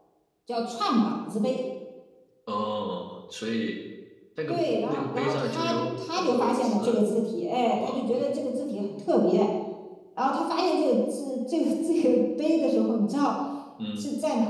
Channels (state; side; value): identical; both; correlation 1.00